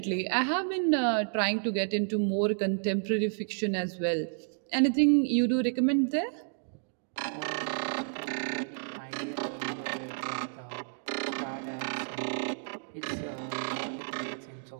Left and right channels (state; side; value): silent; left; digital silence